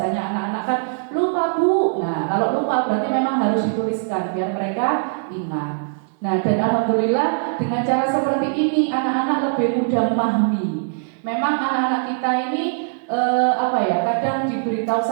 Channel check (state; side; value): silent; left; digital silence